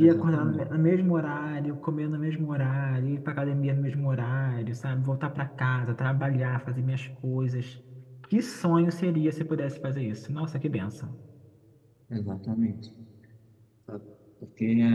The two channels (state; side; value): identical; both; correlation 1.00